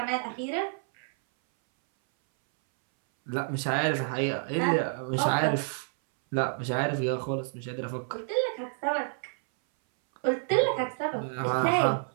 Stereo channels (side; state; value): left; silent; 59 dB below the other